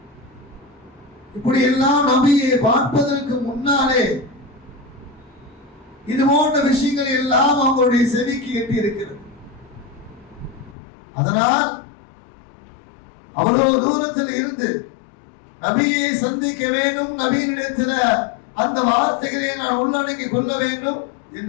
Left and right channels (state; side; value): drops out; right; at 10.8 s